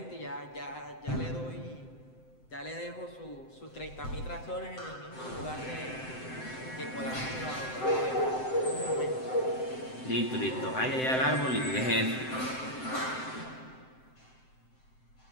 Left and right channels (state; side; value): late; right; 7.8 ms